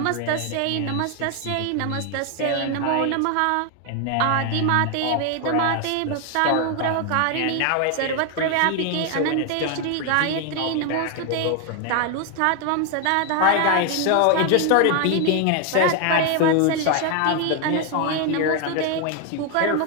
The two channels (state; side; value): different; both; correlation 0.01